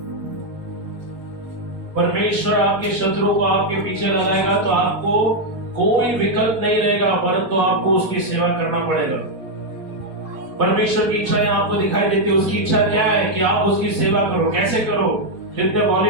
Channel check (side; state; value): left; late; 4.6 ms